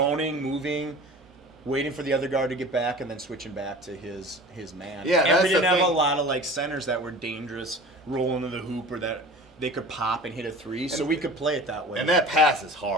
moving, waiting for the other guard to get back, and then switching back to his man. Yeah, and we didn't have a lot of centers that were dangerous, rolling to the hoop, or that they could pop and hit a three, so we could play it that way. And that pass is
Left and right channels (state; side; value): normal; both; correlation 0.40